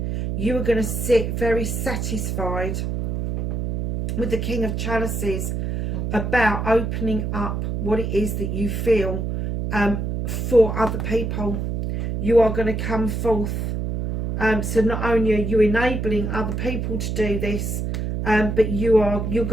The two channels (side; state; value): right; noise; hum, 2 dB below the sound